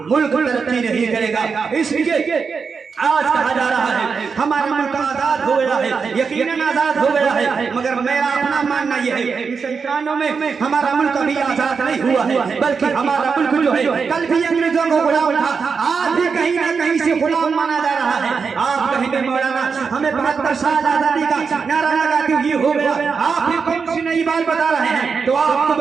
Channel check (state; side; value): quieter; left; 5.5 dB